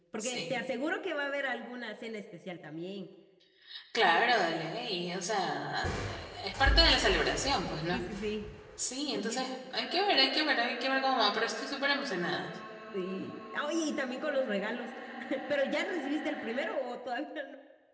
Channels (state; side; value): identical; both; correlation 1.00